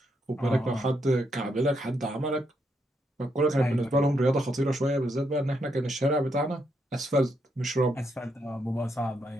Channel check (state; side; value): normal; both; correlation 0.79